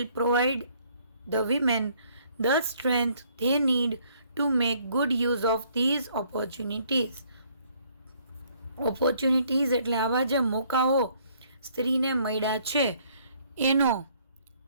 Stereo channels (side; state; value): both; inverted; correlation -0.64